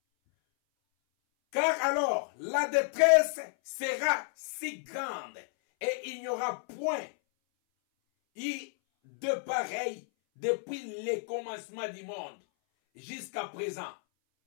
car alors la détresse sera si grande et il n'y aura point de pareil depuis le commencement du monde jusqu'à présent.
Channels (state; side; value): silent; right; 57 dB below the other